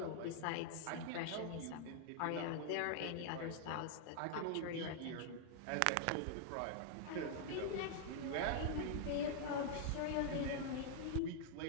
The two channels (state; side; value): different; both; correlation -0.01